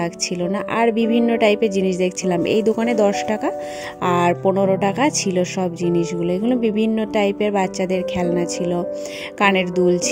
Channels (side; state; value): both; identical; correlation 1.00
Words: না। আর বিভিন্ন টাইপের জিনিস দেখছিলাম। এই দোকানে 10 টাকা আর 15 টাকা ছিল সব জিনিসগুলো। এগুলো বিভিন্ন টাইপের বাচ্চাদের খেলনা ছিল, কানের দুল